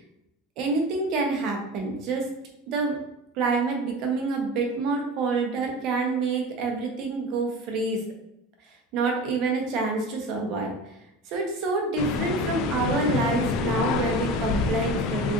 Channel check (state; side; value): normal; both; correlation 0.32